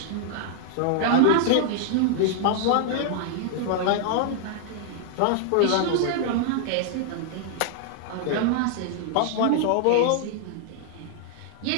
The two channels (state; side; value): different; both; correlation 0.00